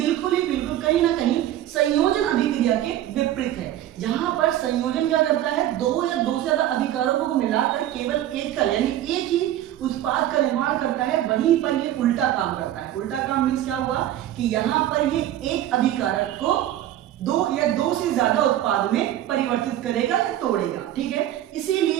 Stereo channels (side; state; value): left; quieter; 12.7 dB